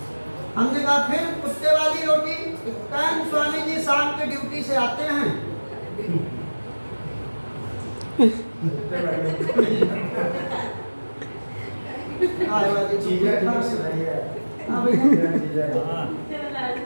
हमने कहा फिर कुत्ते वाली रोटी? कहें स्वामी जी शाम के ड्यूटी से आते हैं, गाय वाली चीजें हाँ भैया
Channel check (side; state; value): both; inverted; correlation -1.00